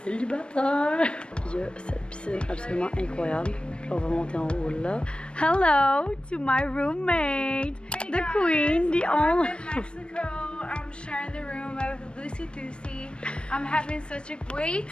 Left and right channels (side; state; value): right; late; 0.056 ms